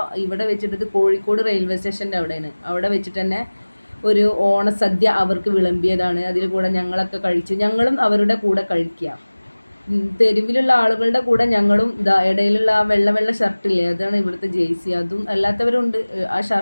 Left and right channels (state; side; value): inverted; both; correlation -1.00